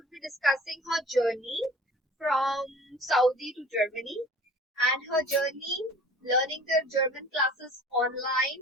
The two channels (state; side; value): normal; both; correlation 0.46